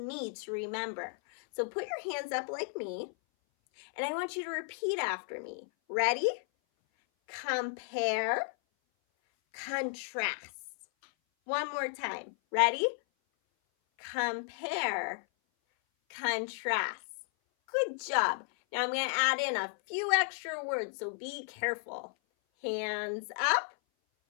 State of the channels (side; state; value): right; silent; 55 dB below the other